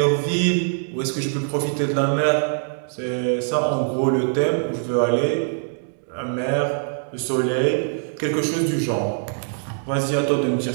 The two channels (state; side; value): silent; left; 64 dB below the other